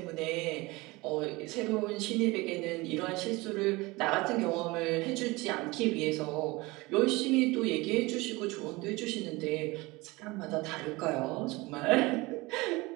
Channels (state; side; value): quieter; left; 22.7 dB